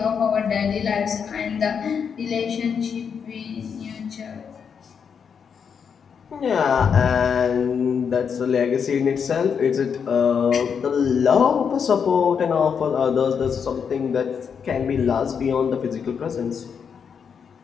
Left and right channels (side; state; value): right; quieter; 6.8 dB